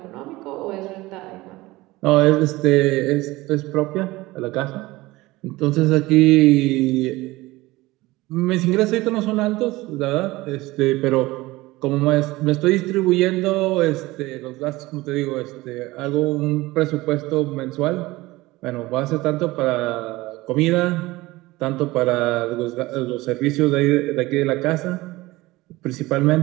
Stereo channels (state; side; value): quieter; left; 19.7 dB